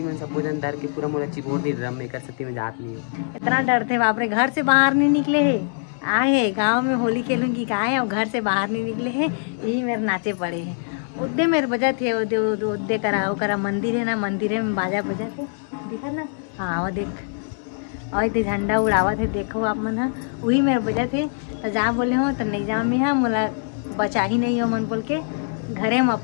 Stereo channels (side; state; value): right; silent; 63 dB below the other